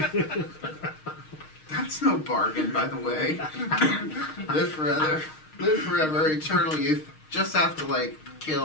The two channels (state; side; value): late; right; 6.4 ms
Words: That's no bargain, by the way. Live forever, eternal youth. Just have to, like,